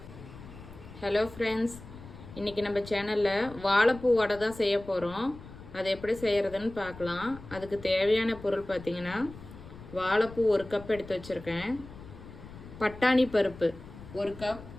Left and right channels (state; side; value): noise; left; rumble, 16 dB below the sound